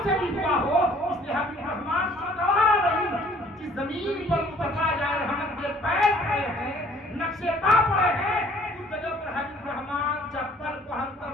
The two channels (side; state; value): both; normal; correlation 0.56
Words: से भी हुआ हो, इसलिए हबीब रहमान को गवारा नहीं कि जमीन पर मुस्तफा जाए रहमत के पैर पड़े हैं, नक्शे पा पड़े हैं, उस जगह पर हबीब रहमान चप्पल को हल्का